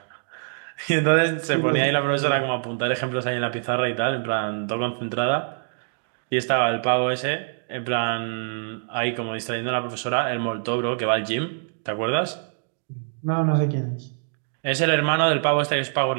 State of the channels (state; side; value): silent; left; digital silence